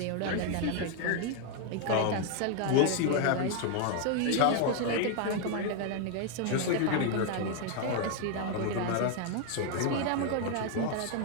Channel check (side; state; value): both; different; correlation 0.01